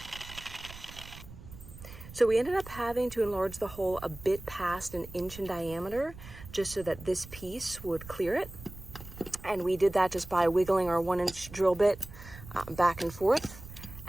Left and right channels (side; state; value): right; noise; rumble, 16 dB below the sound